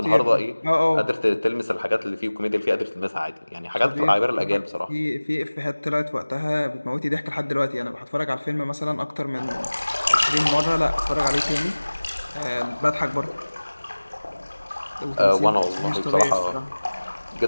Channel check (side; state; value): both; inverted; correlation -1.00